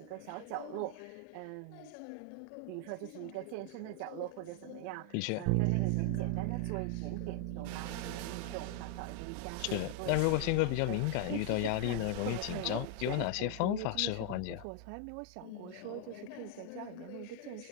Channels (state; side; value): different; both; correlation 0.00